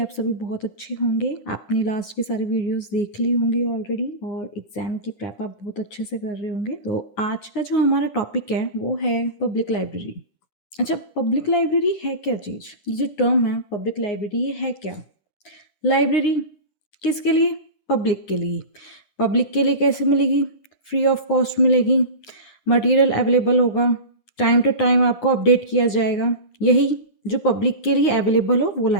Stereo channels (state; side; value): late; right; 10 ms